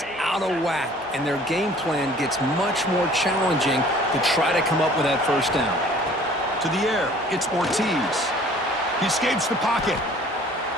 out of whack, and their game plan gets much more challenging to try to come up with that first down. To the air, it's Ortiz. He escapes the pocket.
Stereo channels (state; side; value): normal; both; correlation 0.52